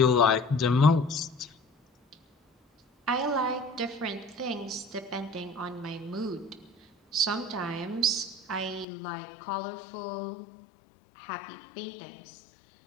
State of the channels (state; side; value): drops out; right; at 8.8 s